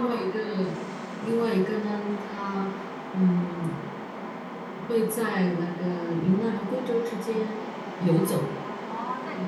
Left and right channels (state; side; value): identical; both; correlation 1.00